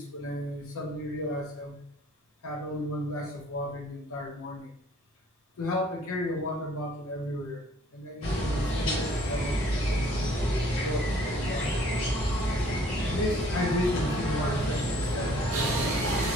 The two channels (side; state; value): both; normal; correlation 0.58